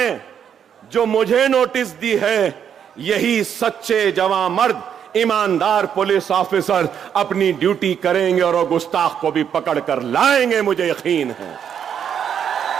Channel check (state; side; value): quieter; left; 8.4 dB